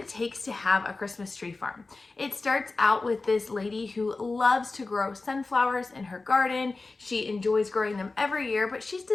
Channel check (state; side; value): quieter; right; 3.6 dB